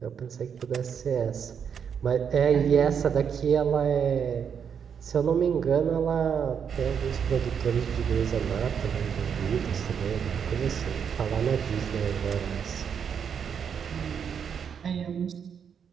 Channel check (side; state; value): left; quieter; 7.4 dB